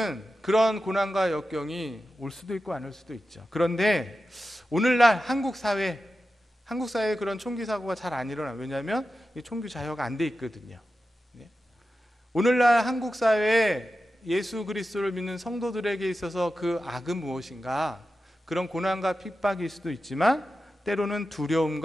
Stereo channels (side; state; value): both; normal; correlation 0.92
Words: 그런 고난과 역경이 올 수도 있고 안 올 수도 있죠. 그런데 오늘날 한국 사회 한국 사회에 그런 총기 사고가 잘 안 일어나요. 왜냐하면 이 총기 자유가 안 돼 있거든요. 네. 오늘날 한국 사회에 예수 그리스도를 믿는 성도들에게 있어서 그 악은 무엇인가? 그런 고난과 핍박일 수도 있지만 때로는